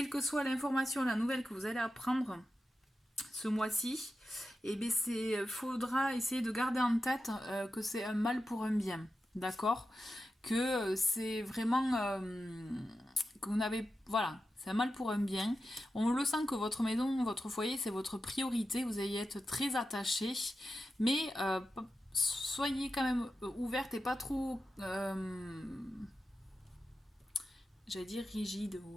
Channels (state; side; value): normal; both; correlation 0.90